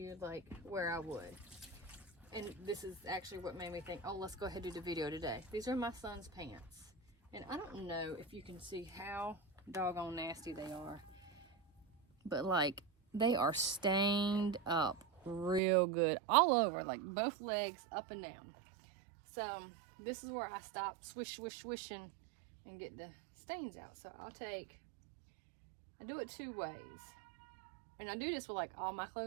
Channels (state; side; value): drops out; left; at 15.6 s